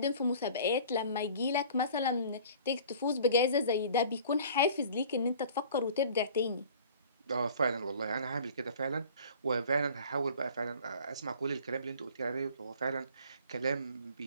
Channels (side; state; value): both; inverted; correlation -0.47